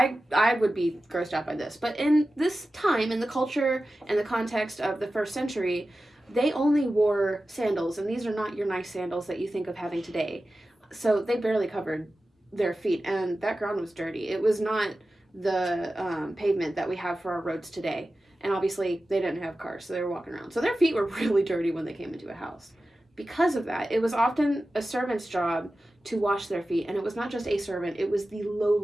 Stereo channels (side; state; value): both; normal; correlation 0.94